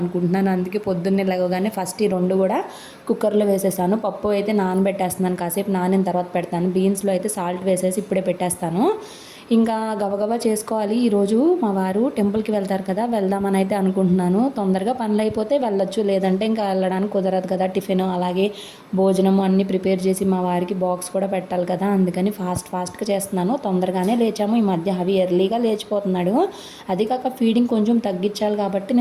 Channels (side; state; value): both; identical; correlation 1.00